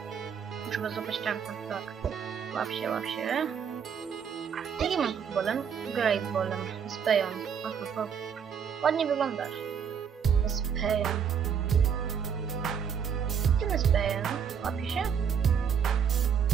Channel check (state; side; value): quieter; left; 7.3 dB